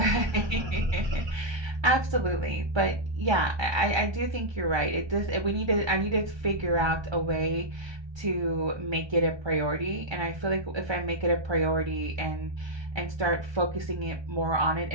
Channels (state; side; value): late; left; 1.2 ms